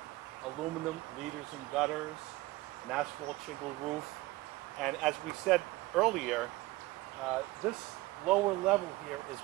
aluminum leaders and gutters, an asphalt shingle roof. And as we said earlier, this lower level here is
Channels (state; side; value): quieter; left; 19.9 dB